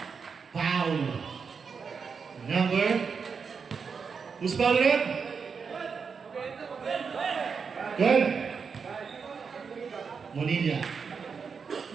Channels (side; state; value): left; quieter; 5.7 dB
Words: Foul. Number. Who's foul rep? Good. Monilla.